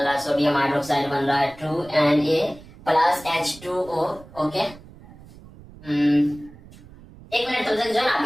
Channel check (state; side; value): noise; right; rumble, 20 dB below the sound